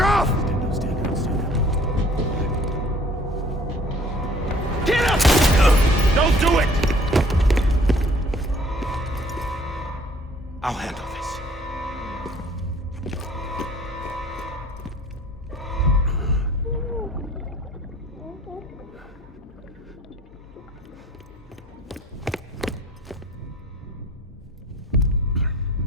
Get up! Don't do it! I'll handle this.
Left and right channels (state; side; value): normal; both; correlation 0.54